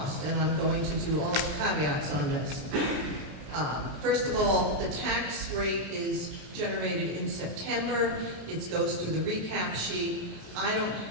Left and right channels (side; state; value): left; late; 27 ms